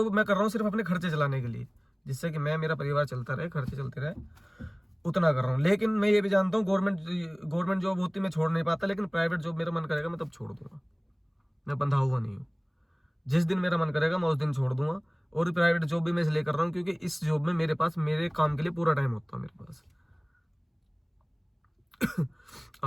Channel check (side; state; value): both; identical; correlation 1.00